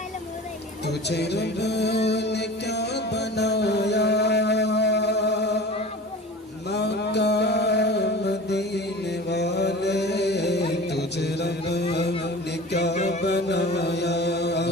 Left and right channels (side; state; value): both; normal; correlation 0.37